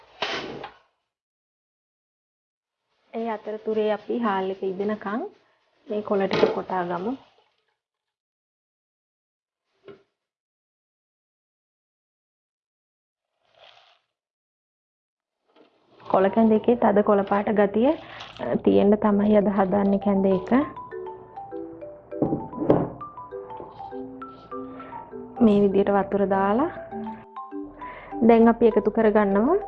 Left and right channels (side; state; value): both; identical; correlation 1.00